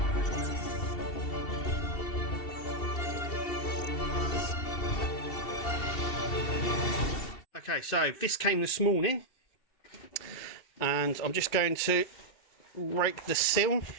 Okay, so this came this morning and I'm just going to rake the seal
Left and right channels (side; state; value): right; late; 2.7 ms